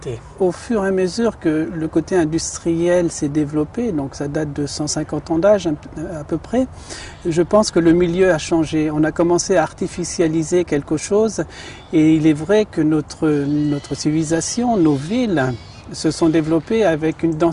Au fur et à mesure que le côté industriel s'est développé, donc ça date de 150 ans d'âge à peu près, je pense que le milieu a changé. On a commencé à artificialiser quelque chose et il est vrai que notre civilisation, nos villes, se sont développées avec une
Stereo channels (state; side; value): identical; both; correlation 1.00